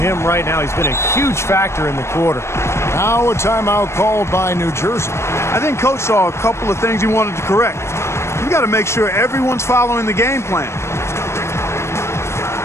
right now. He's been a huge factor in the quarter. Now a timeout called by New Jersey. I think Coach saw a couple of things he wanted to correct. You got to make sure everyone's following the game plan.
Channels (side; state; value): right; late; 0.13 ms